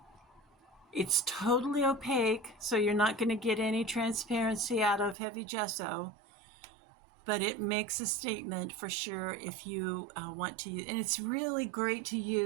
It's totally opaque, so you're not going to get any transparency out of heavy gesso, but it makes a statement for sure if you want to use. And it's really great to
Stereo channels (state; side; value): drops out; left; at 5.2 s